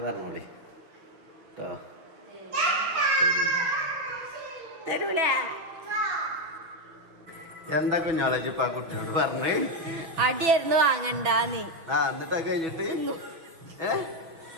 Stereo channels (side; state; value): left; late; 5.8 ms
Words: പറഞ്ഞോളി കേട്ടോ. തരൂല എന്താ കുഞ്ഞോളജി ഇപ്പൊ ആ കുട്ടിയോട് പറഞ്ഞേ? അടിയായിരുന്നു വാങ്ങണ്ടാന്ന്. എന്നിട്ടാ കഴിഞ്ഞിട്ട്